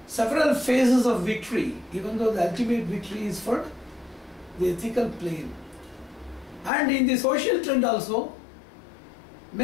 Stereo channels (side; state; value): right; drops out; at 6.7 s